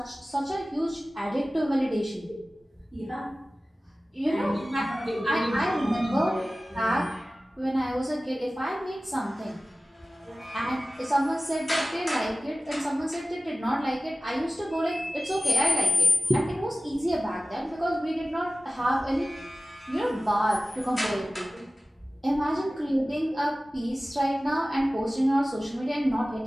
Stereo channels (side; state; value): both; normal; correlation 0.97